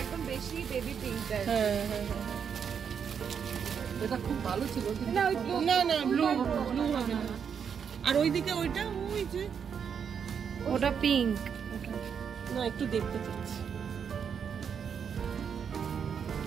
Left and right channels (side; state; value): left; quieter; 7.2 dB